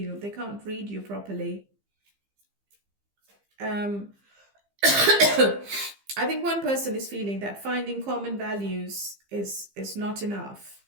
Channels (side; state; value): left; late; 15 ms